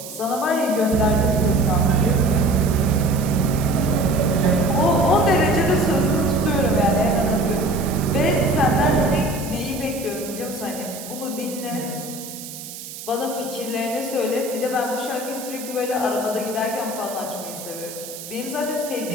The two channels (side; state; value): right; noise; hiss, 12 dB below the sound